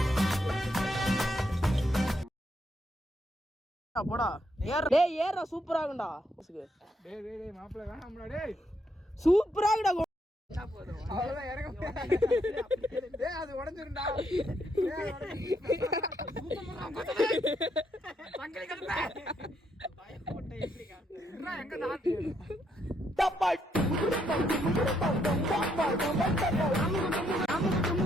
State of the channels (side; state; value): both; normal; correlation 0.76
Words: போடா. டேய் ஏறா, சூப்பரா இருக்குடா. டேய் டேய் டேய் மாப்ள வேணாம்டா. டேய் சூப்பரா இருக்குடா. அவ்வளவுதான் இறங்க. டேய் அது உடைஞ்சிரும்டா. சங்கலி கடுப்ப. பயப்பட்ட எப்படி காட்டுறா? எங்க நாட்டு டப்பாய்